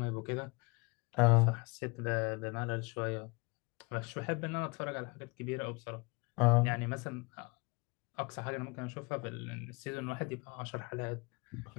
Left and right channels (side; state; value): right; quieter; 28.1 dB